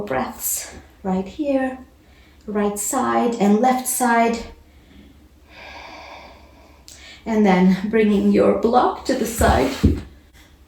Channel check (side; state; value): both; identical; correlation 1.00